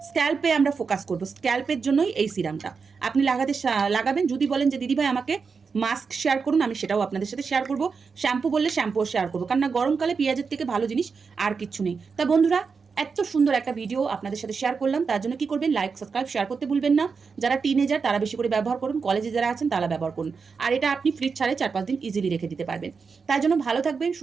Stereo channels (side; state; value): left; quieter; 5.3 dB